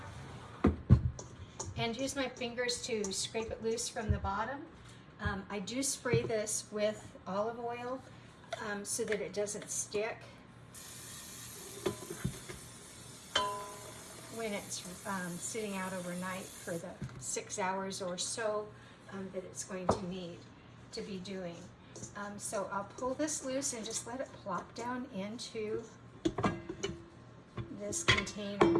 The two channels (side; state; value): both; identical; correlation 1.00